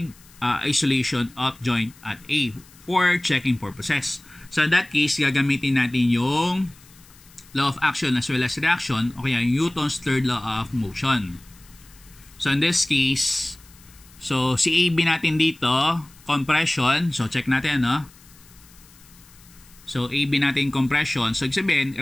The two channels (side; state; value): left; noise; hiss, 25 dB below the sound